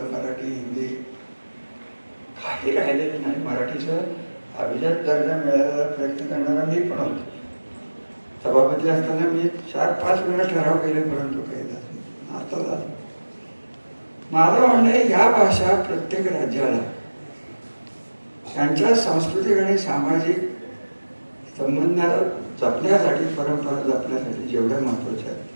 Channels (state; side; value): inverted; both; correlation -1.00